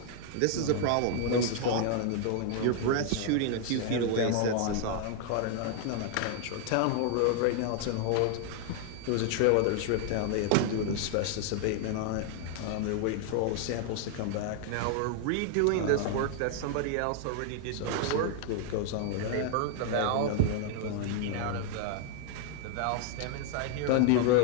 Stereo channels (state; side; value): different; both; correlation 0.00